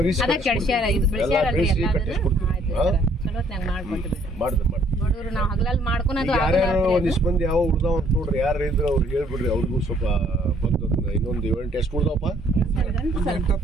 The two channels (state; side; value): normal; both; correlation 0.63